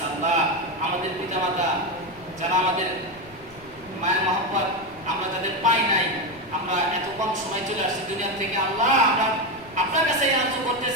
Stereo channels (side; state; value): left; noise; rumble, 24 dB below the sound